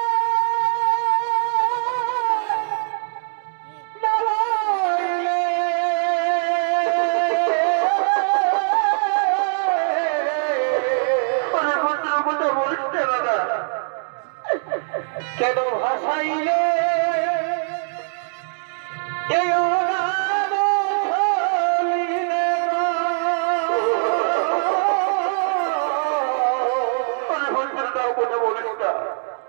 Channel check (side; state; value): left; silent; digital silence